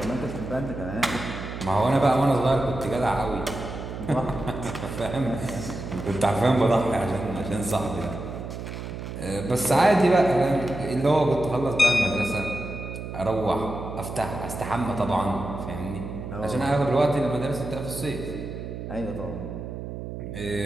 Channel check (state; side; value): noise; right; hum, 8 dB below the sound